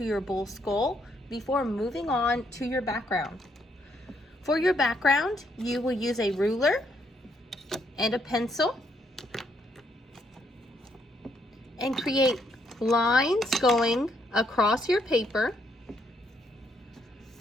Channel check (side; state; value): both; normal; correlation 0.73